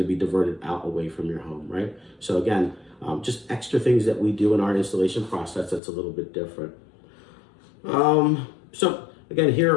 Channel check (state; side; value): drops out; right; at 5.8 s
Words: to be diverted out away from your home, right? So again, just extra things that we do in our installation process that's a little bit different. So again, here